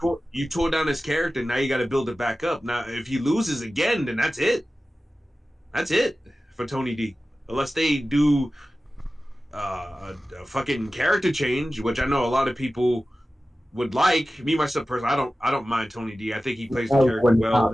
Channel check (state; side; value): normal; both; correlation 0.95